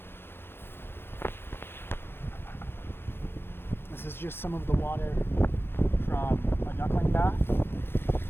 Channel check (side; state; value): right; late; 0.11 ms